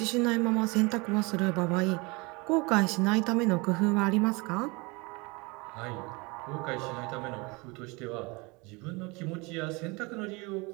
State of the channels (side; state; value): left; quieter; 26.8 dB